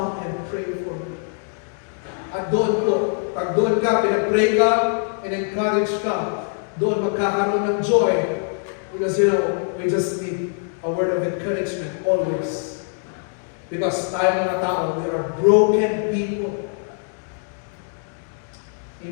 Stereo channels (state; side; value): silent; right; 64 dB below the other